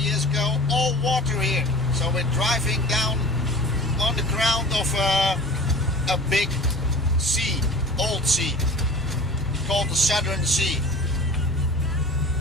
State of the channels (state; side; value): normal; both; correlation 0.41